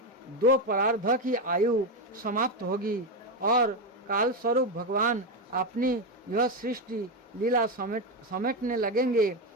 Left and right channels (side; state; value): both; normal; correlation 0.10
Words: 2 परार्ध की आयु समाप्त होगी और काल स्वरूप भगवान अपनी यह सृष्टि लीला समेटने लगेंगे